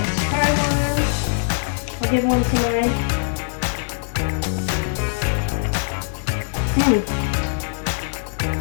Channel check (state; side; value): silent; right; digital silence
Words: try one. I'll give one to mine.